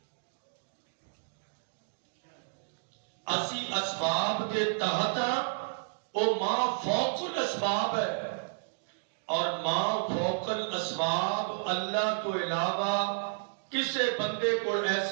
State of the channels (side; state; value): left; silent; digital silence